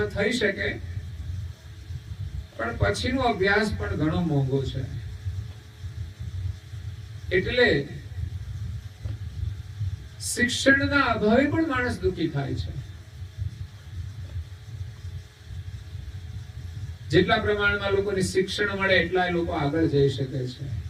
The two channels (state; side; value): identical; both; correlation 1.00